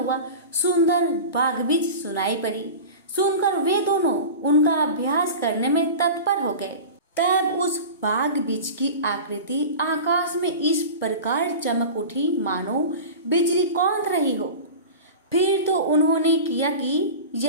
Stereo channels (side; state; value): both; inverted; correlation -0.32